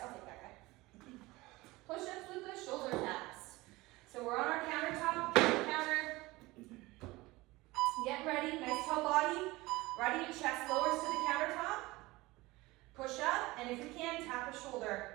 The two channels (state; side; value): quieter; left; 20.8 dB